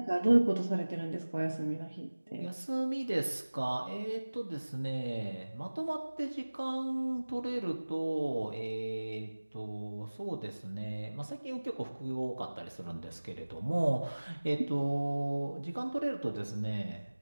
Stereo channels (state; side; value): inverted; both; correlation -1.00